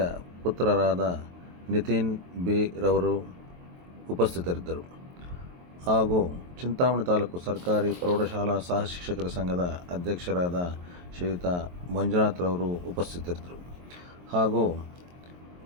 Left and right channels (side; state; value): left; late; 23 ms